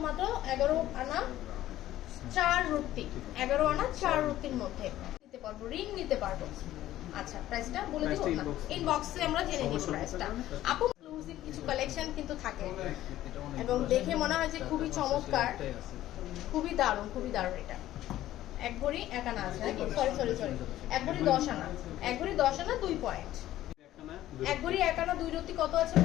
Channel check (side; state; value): right; quieter; 14.0 dB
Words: মাত্র 11 আনা 4 রুটি, 11 আনা 4 রুটির মধ্যে নিতে পারবো, রিং নিতে পারবো। আচ্ছা প্রাইসটা বলে দিব না, ইনবক্সে আমরা জেনে নিব প্রাইসটা। আপু এক্সক্লুসিভ কিছু কালেকশন কিন্তু থাকে এবং দেখে মনে হয় যে খুবই চমৎকার, খুবই দারুণ, খুবই দারুণ। এটা 1 ভরি 1 আনা আছে নাকি? সরি 1 ভরি 10 আনা, 1 ভরি 10 আনা 2 পয়েন্ট। 1 ভরি 1 আনা 2 রুটি কত আছে